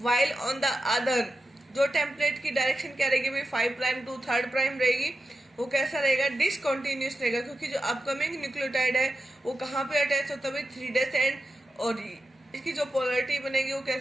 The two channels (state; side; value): normal; both; correlation 0.89